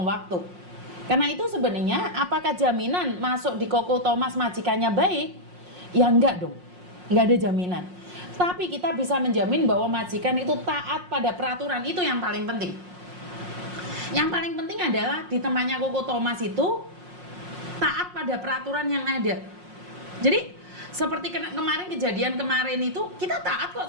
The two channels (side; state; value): left; late; 5.5 ms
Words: waktu. Karena itu sebenarnya apakah jaminan masuk di Koko Thomas majikannya baik? Ya enggak dong. Enggak ada jaminan. Tapi kita bisa menjamin bahwa majikan itu taat pada peraturan, itu yang paling penting. Yang paling penting adalah di tempatnya Koko Thomas itu taat pada peraturan yang ada. Jadi seperti kemarin kejadian kemarin itu kita taat kok